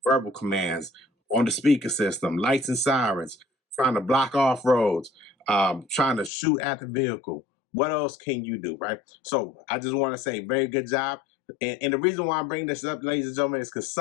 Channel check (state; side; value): drops out; right; at 6.3 s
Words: Verbal commands on the speaker system, lights and sirens, trying to block off roads, trying to shoot at the vehicle. What else can you do, right? So I just want to say, very good job. And the reason why I'm bringing this up, ladies and gentlemen, is because